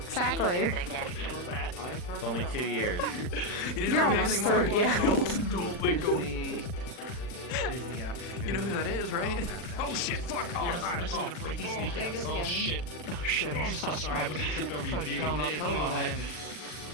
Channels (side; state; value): right; late; 40 ms